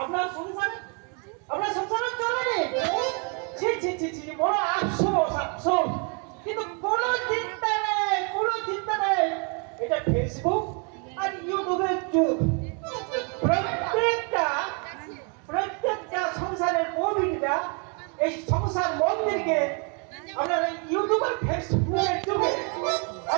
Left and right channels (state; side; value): quieter; left; 36.8 dB